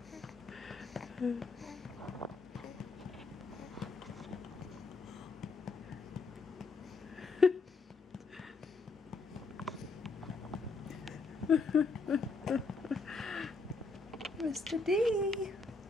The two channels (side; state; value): right; quieter; 3.9 dB